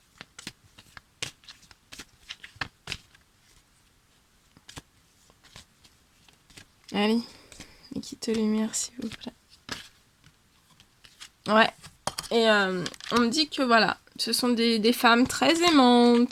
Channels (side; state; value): both; identical; correlation 1.00